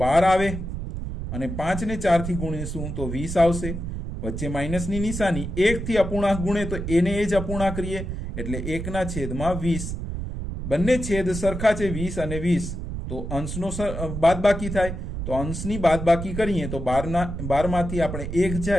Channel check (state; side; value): noise; right; rumble, 6 dB below the sound